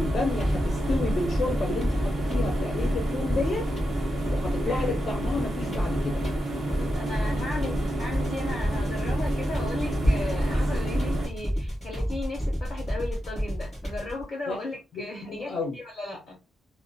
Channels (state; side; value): normal; both; correlation 0.88